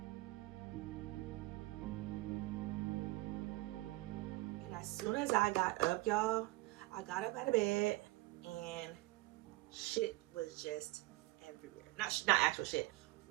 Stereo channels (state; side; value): quieter; left; 20.5 dB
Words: And as soon as I got up, y'all, I got up out of bed and shit was just everywhere. Not actual shit.